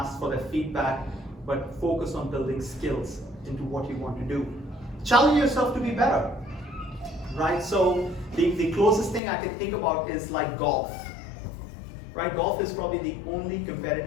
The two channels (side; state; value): right; drops out; at 9.2 s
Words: for their feedback, but focus on building skills into what you want to do. Challenge yourself to be better, right? So the closest thing I can think about is like golf, right? Golf is probably the only